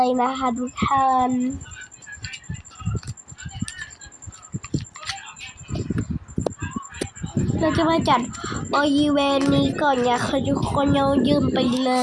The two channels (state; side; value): identical; both; correlation 1.00